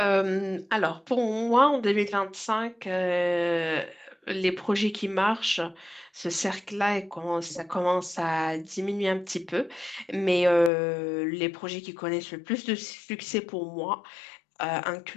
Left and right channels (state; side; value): drops out; right; at 10.7 s